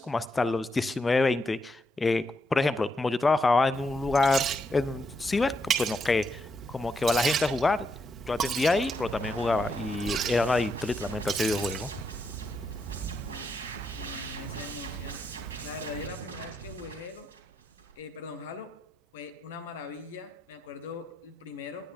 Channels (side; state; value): both; normal; correlation 0.81